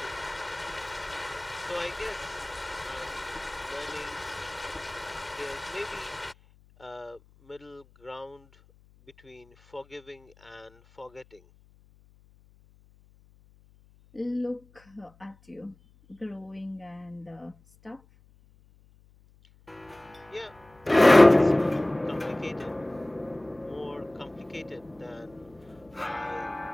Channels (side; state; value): left; noise; hum, 28 dB below the sound